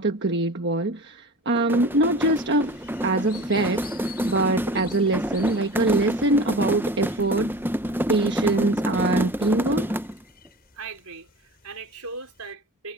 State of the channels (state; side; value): normal; both; correlation 0.37